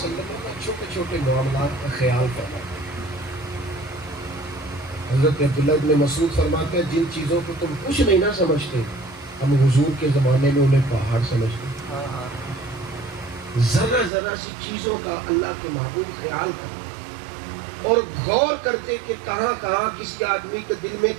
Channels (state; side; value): drops out; left; at 14.1 s